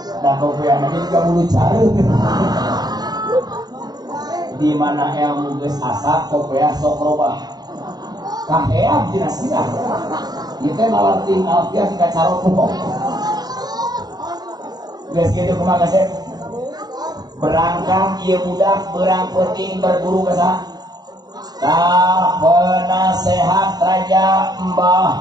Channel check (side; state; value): left; late; 0.19 ms